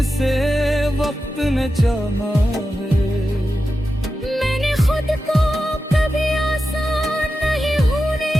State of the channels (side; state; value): both; normal; correlation 0.91